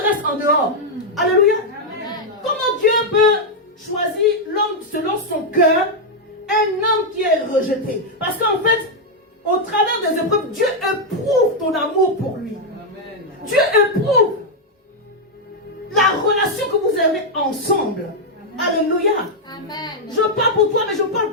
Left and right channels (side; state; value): both; normal; correlation -0.01